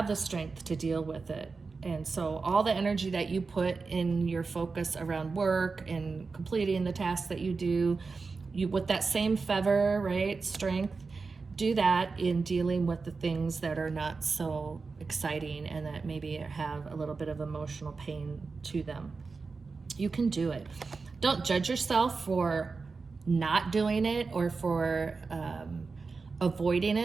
the strength to deal with it. And so all the energy that you put in your focus around work and completing the tasks that you do, with that same fervor, right, strength, do that in dealing with the things that are not so exciting and that maybe have a little bit of emotional pain to them. You can do it. Don't judge yourself for not doing it or for avoiding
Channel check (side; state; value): left; quieter; 4.4 dB